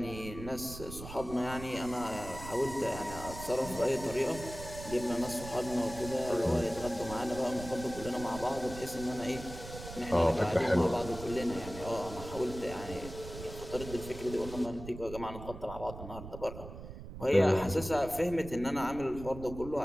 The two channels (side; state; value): right; noise; rumble, 12 dB below the sound